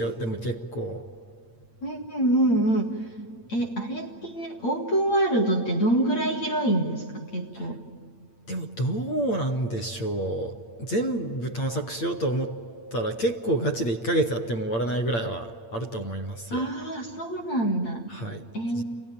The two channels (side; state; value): right; late; 8.7 ms